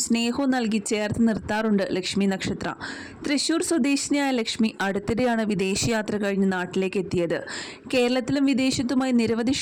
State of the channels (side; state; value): both; identical; correlation 1.00